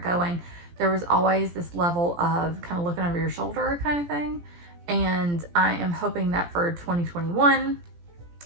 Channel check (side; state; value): left; late; 17 ms